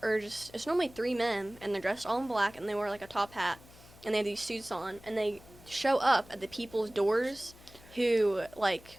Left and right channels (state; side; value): noise; left; hum, 22 dB below the sound